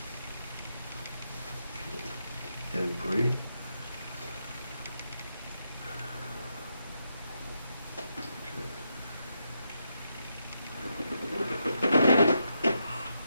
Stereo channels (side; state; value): both; inverted; correlation -0.82